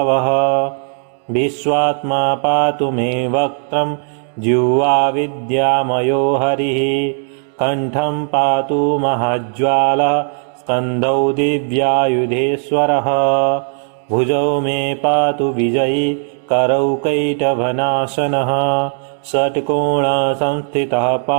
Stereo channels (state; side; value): silent; left; 69 dB below the other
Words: विश्वात्मा पातु मे वक्त्रं जिह्वा विद्यामयो हरिः। कण्ठं पातु महाज्वालः स्कन्धौ दिव्यायुधेश्वरः। भुजौ मे पातु विजयी करौ कैटभनाशनः। षट्कोणसंस्थितः